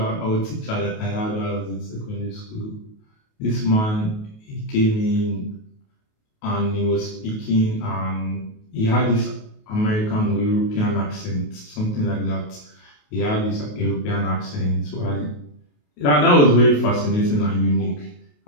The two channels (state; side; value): late; right; 28 ms